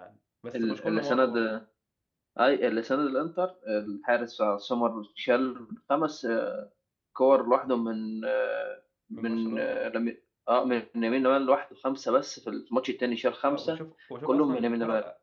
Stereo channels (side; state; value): both; identical; correlation 1.00